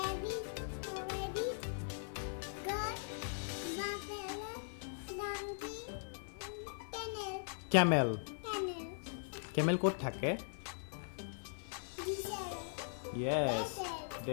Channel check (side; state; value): right; silent; 51 dB below the other